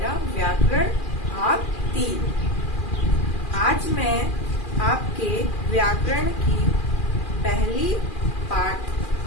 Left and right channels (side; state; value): right; late; 2.4 ms